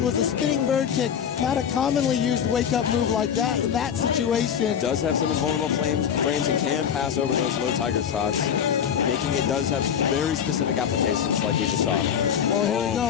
was a spinning bird kick. Not a commonly used wake-up move like that in that situation. Does have some invulnerable frames and can pass over those low tiger shots, making it does have very specific applications like we just saw. Oh, here we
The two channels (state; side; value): quieter; right; 8.3 dB